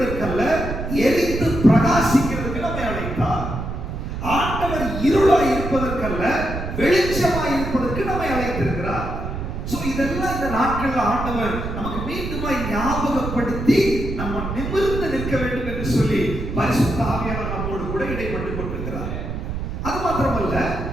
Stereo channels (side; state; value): right; noise; rumble, 5 dB below the sound